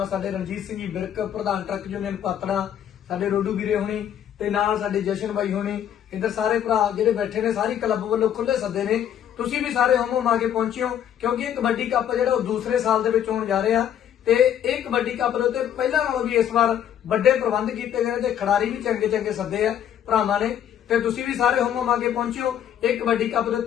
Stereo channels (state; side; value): quieter; right; 9.9 dB